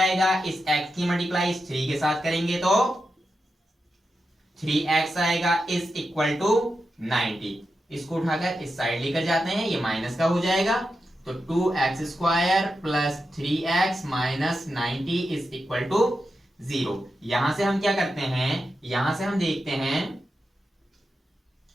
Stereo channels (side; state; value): both; normal; correlation 0.89